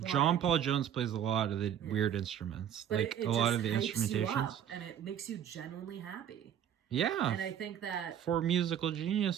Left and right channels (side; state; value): left; quieter; 9.7 dB